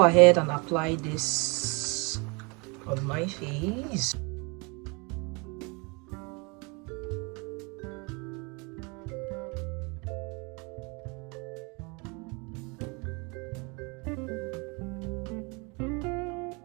ahead and apply this on my face.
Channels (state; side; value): quieter; left; 29.9 dB